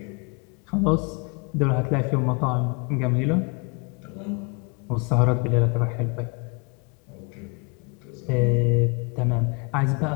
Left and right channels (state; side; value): quieter; right; 32.3 dB